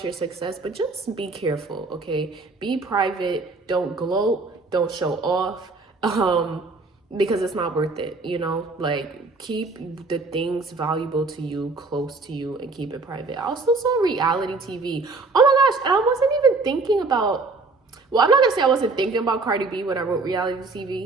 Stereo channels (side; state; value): left; quieter; 3.7 dB